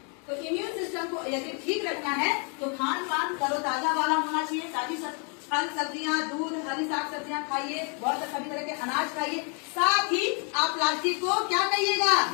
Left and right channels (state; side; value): quieter; right; 37.6 dB